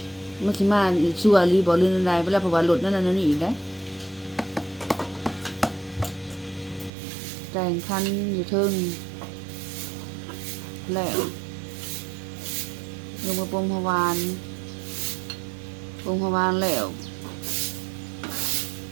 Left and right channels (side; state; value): left; drops out; at 6.9 s